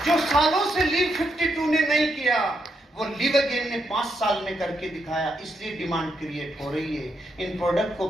जो सालों से लीव 52 ने नहीं किया, वो लिव अगेन ने 5 साल में करके दिखाया। इसलिए डिमांड क्रिएट हो रही है। इन प्रोडक्ट को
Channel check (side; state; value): both; normal; correlation 0.80